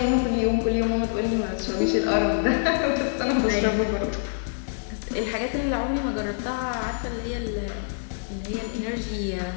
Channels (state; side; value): silent; right; digital silence